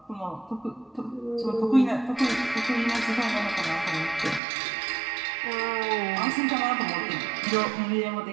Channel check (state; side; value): drops out; left; at 4.4 s